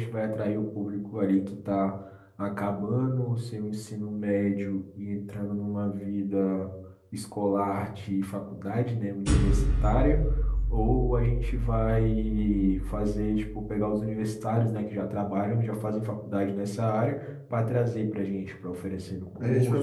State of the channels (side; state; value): both; identical; correlation 1.00